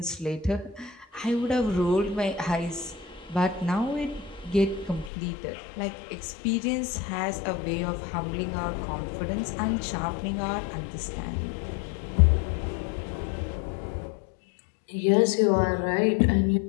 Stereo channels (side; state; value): right; drops out; at 5.1 s